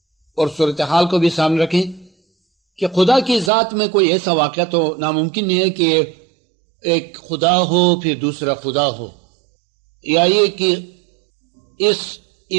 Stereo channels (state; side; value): drops out; left; at 3.5 s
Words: اور صورتحال کو بھی سامنے رکھیں کہ خدا کی ذات میں کوئی ایسا واقعہ تو ناممکن نہیں ہے کہ ایک خدا ہو پھر دوسرا خدا ہو، یا یہ کہ اس